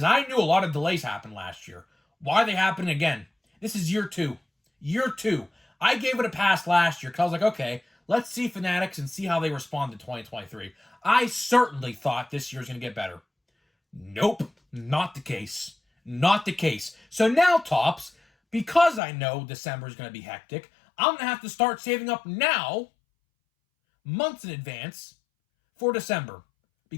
I knew a lot of delays happened last year. Why are they happening again? This is year two. Year two. I gave it a pass last year because I was like, okay, let's see Fanatics and see how they respond to 2023. I certainly thought this year's going to get better. Nope, not the case. Not the case. So now, Tops, because I know December is going to be hectic, I'm going to have to start saving up now, months in advance, for December.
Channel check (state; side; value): drops out; right; at 19.0 s